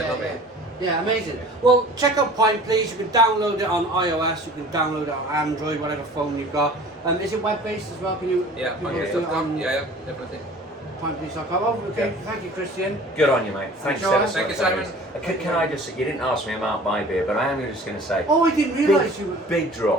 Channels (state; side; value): normal; both; correlation 0.45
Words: loves it. Yeah, amazing. Well, check out Pint Please. You can download it on iOS. You can download it on Android, whatever phone you've got. Is it web-based as well? Can you? Pintplease.com. Yeah, definitely. Pintplease.com. Oh, okay. Thank you, Christian. Good on you, mate. Thanks so much. Thank you, Simon. Can I just? You didn't ask me about my beer, but I am just going to say. Oh, I didn't realise you were. Big